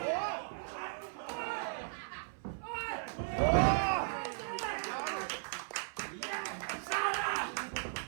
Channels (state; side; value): silent; left; 53 dB below the other